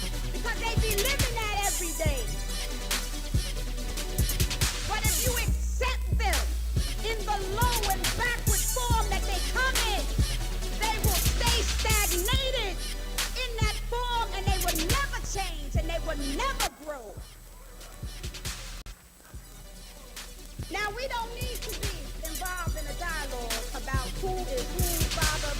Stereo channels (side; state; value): both; identical; correlation 1.00